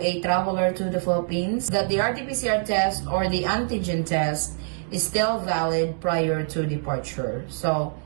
traveler to the Philippines that the RT-PCR test or the antigen test is still valid prior to departure. So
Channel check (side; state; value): left; silent; 62 dB below the other